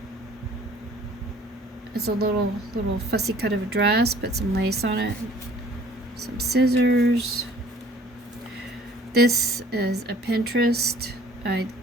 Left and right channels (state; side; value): normal; both; correlation 0.53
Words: it's a little fussy cut of a dress. Put some lace on it. Some scissors. This is a Pinterest. I'm